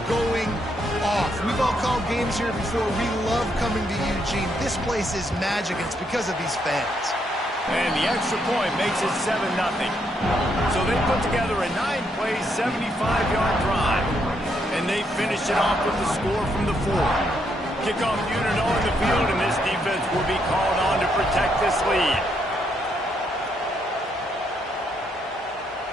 going off. We've all called games here before. We love coming to Eugene. This place is magic, and it's because of these fans. And the extra point makes it 7-0. So they put together a 9-play, 75-yard drive. And they finish it off with the score from the 4. Kickoff unit on the field, and this defense will be called on to protect this lead.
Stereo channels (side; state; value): both; normal; correlation 0.76